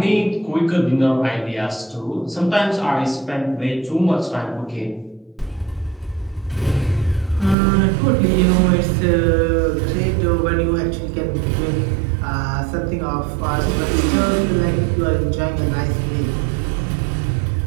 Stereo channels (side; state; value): left; drops out; at 7.6 s